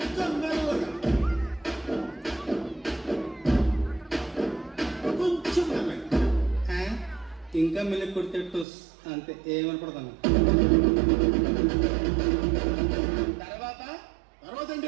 మెల్లగా కొంచెం మెల్లగా ఇంకా మెల్లి కొడితే టోస్ అంతే ఏమనపడతాను. తర్వాత తర్వాత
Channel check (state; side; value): drops out; left; at 8.7 s